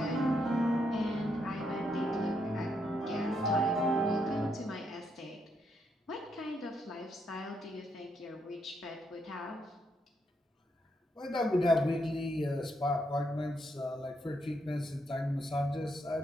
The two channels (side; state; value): both; normal; correlation 0.77